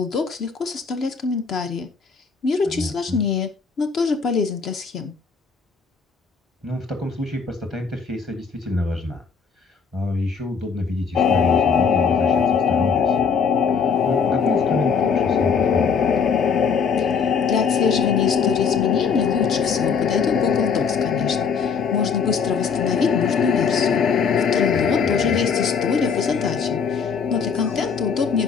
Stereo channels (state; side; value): quieter; right; 5.9 dB